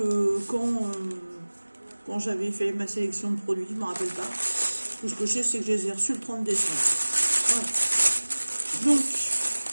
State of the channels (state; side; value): inverted; both; correlation -1.00